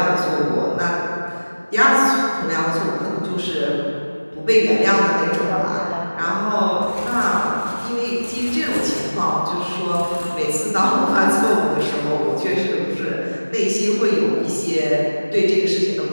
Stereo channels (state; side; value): inverted; both; correlation -1.00